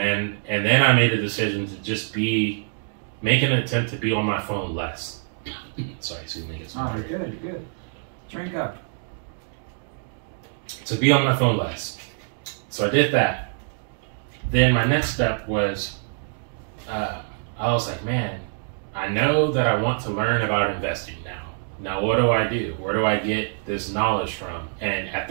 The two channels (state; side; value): silent; left; 62 dB below the other